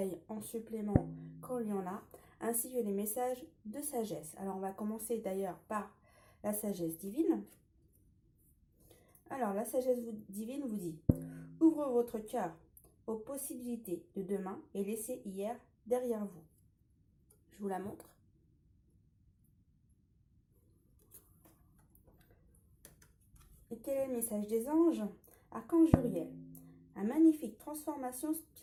en supplément quand il y en a, ainsi que les messages de sagesse. Alors on va commencer d'ailleurs par la sagesse divine. Alors la sagesse divine vous dit: ouvre votre cœur aux possibilités de demain et laissez hier derrière vous. Je vous la montre. Et quel est le message des anges? Archange Uriel. Une magnifique transformation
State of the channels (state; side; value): identical; both; correlation 1.00